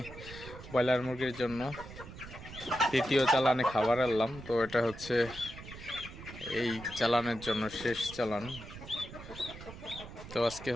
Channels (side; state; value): right; noise; rumble, 14 dB below the sound